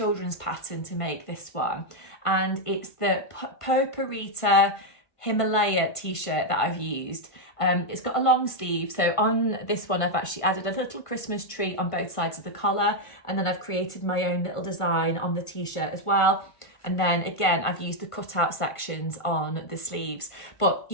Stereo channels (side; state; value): right; late; 1.5 ms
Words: pattern to make this one, and it's the Poparita Himalaya t-shirt that I've used. It's got a long sleeve, so on this one I've actually added a little Christmas tree on both sides of the collar, and then I've created my own little design on the t-shirt as well. And then again, I've used the cutout sections on the sleeves. But,